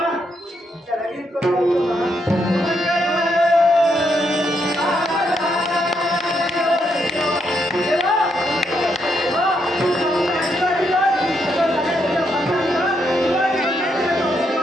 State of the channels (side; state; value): both; normal; correlation 0.78